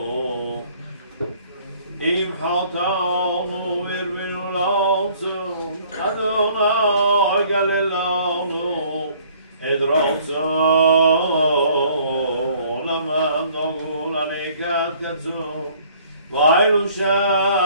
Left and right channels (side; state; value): both; inverted; correlation -0.57